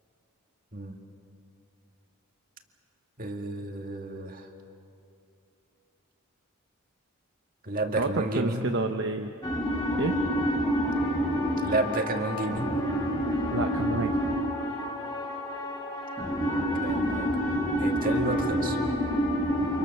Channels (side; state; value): both; normal; correlation 0.47